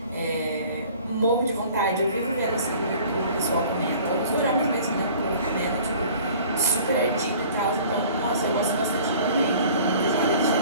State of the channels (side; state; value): both; inverted; correlation -0.49